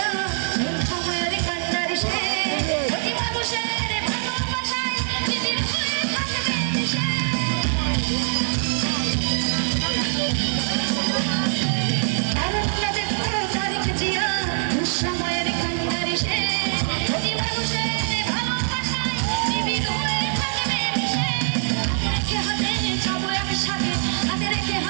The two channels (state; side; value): silent; left; 63 dB below the other